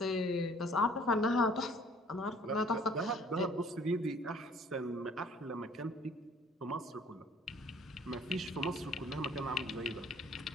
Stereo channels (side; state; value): both; normal; correlation 0.56